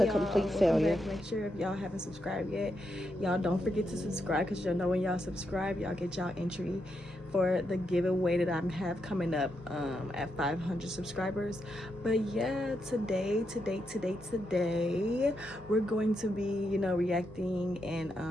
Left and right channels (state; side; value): normal; both; correlation 0.83